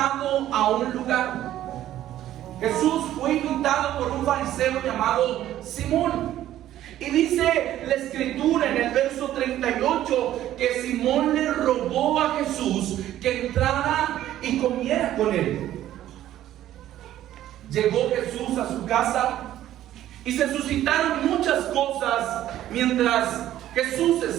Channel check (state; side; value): quieter; left; 12.8 dB